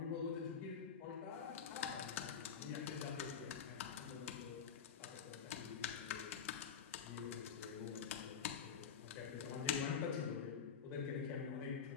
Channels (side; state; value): right; quieter; 7.1 dB